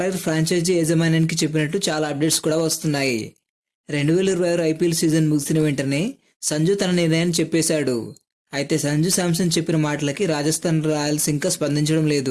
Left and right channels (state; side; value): identical; both; correlation 1.00